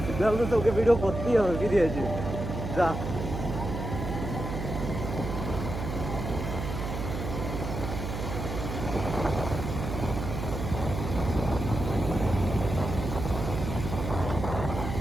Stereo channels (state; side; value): noise; right; hum, 5 dB below the sound